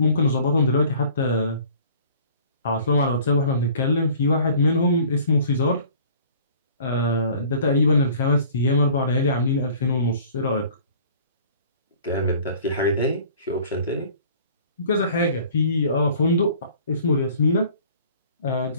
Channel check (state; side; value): inverted; both; correlation -0.50